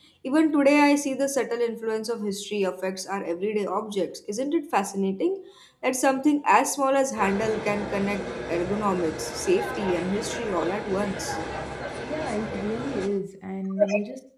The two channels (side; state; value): both; identical; correlation 1.00